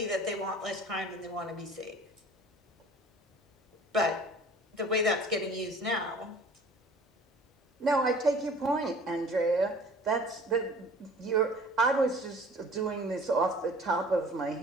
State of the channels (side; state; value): both; normal; correlation 0.48